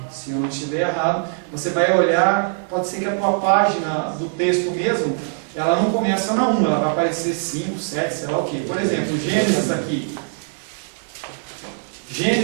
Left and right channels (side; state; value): left; silent; digital silence